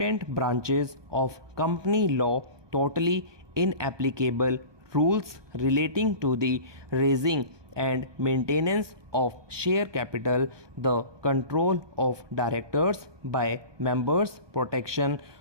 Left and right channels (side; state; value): left; late; 1.2 ms